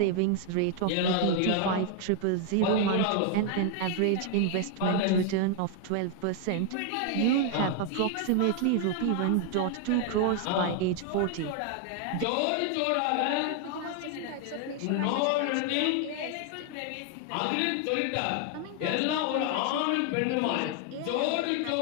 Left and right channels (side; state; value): both; different; correlation 0.00